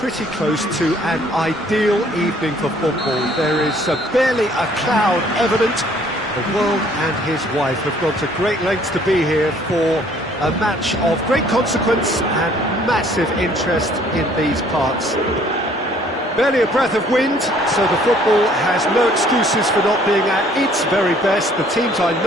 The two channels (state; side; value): normal; both; correlation 0.59